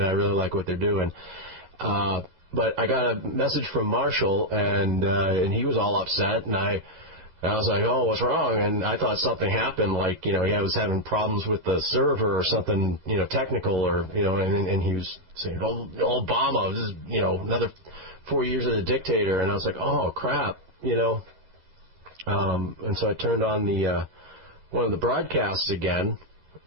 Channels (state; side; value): late; left; 13 ms